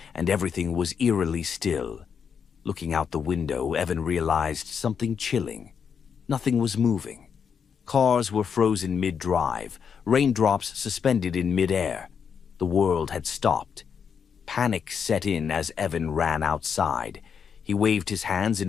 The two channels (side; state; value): right; quieter; 6.8 dB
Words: and everything was eerily still. Looking out the window, Evan realized something chilling. Nothing was moving. Cars were frozen mid-drive, raindrops suspended in mid-air. The world had stopped. Panic set in as Evan ran outside. He waved his hands